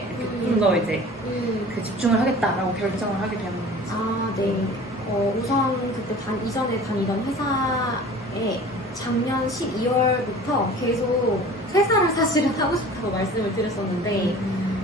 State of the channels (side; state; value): both; normal; correlation 0.43